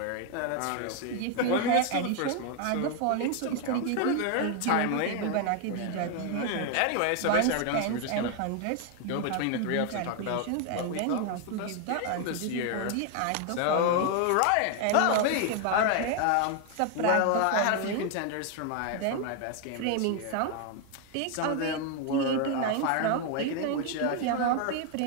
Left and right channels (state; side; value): different; both; correlation 0.01